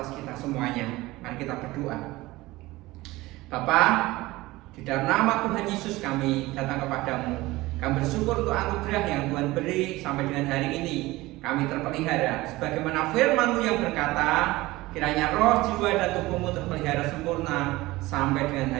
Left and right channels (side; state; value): left; quieter; 19.4 dB